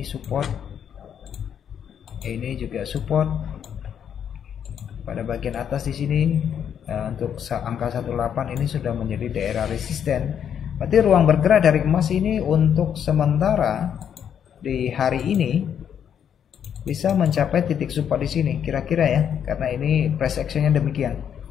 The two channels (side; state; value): right; quieter; 8.6 dB